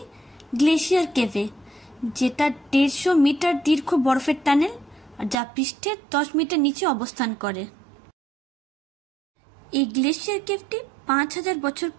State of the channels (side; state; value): left; drops out; at 5.4 s